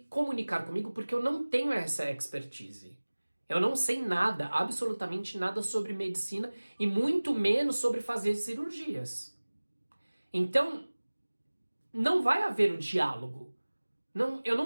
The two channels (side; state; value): both; inverted; correlation -1.00